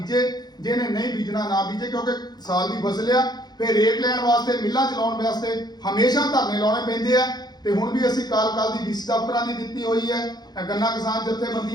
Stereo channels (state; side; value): late; right; 0.20 ms